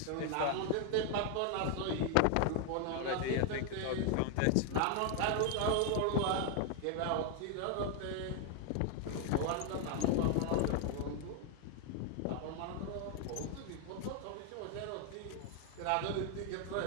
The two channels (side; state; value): both; different; correlation 0.00